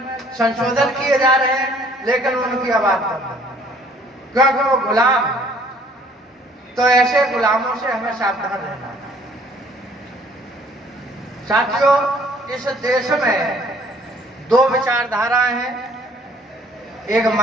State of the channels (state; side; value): normal; both; correlation 0.58